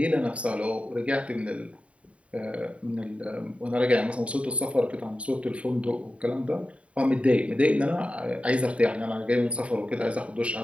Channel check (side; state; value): left; late; 0.063 ms